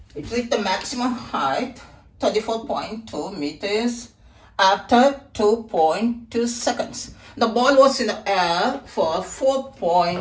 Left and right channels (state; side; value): identical; both; correlation 1.00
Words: It reached the maximum height, 34.2 meters, after 2.2 seconds. The ball was in the air for